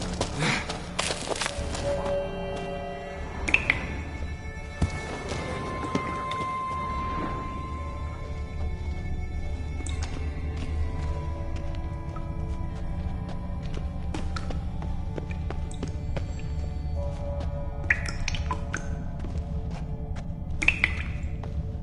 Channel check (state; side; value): identical; both; correlation 1.00